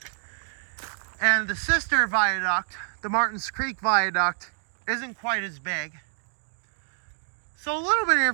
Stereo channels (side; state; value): left; silent; digital silence